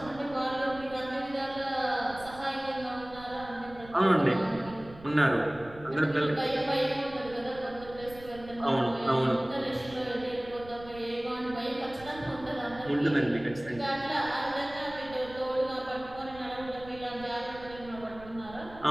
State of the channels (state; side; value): noise; right; rumble, 18 dB below the sound